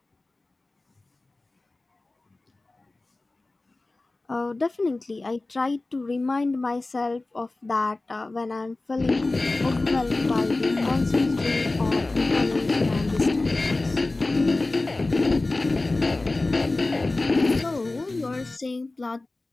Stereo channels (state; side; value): quieter; right; 3.1 dB